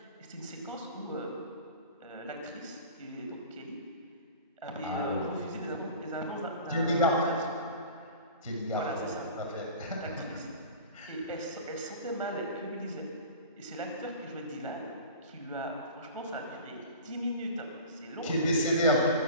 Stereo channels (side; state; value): both; inverted; correlation -0.38